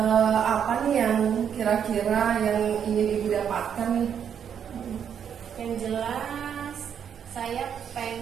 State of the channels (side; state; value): left; quieter; 8.2 dB